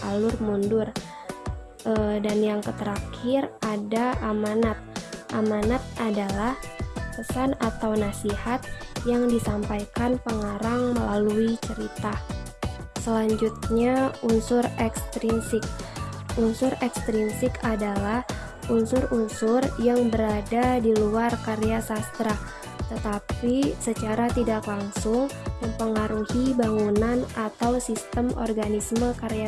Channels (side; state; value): both; identical; correlation 1.00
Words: alur mundur. Dan yang terakhir ada amanat. Amanat adalah pesan atau nasihat yang disampaikan pengarang melalui cerita. Selanjutnya, unsur ekstrinsik. Unsur ekstrinsik adalah unsur-unsur yang berada di luar karya sastra, tetapi secara tidak langsung mempengaruhi bangunan atau sistem organisme